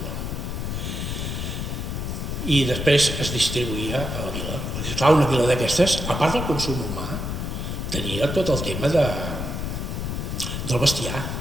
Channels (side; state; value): left; noise; rumble, 3 dB below the sound